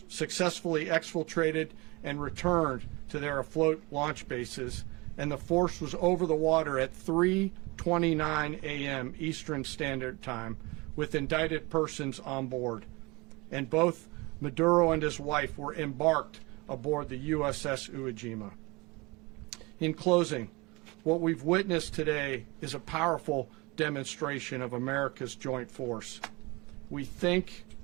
successfully exfiltrated and returned to their afloat launch bases, and the force was over the water at 3:29 a.m. Eastern Standard Time with indicted persons on board. And both Maduro and his wife were embarked aboard the USS Iwo Jima. In closing, what we've witnessed today is a powerful demonstration of America's joint force. We think,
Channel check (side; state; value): left; quieter; 25.3 dB